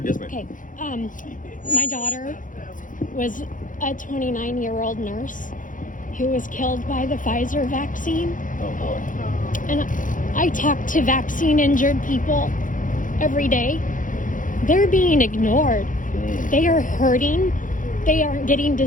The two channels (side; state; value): right; late; 0.38 ms